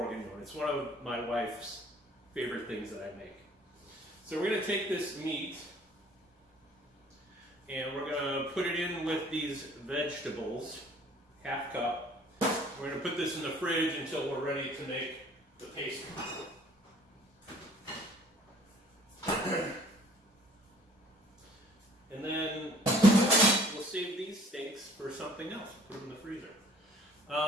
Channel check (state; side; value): normal; both; correlation 0.55